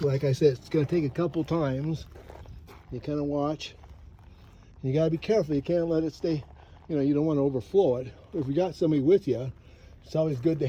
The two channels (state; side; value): identical; both; correlation 1.00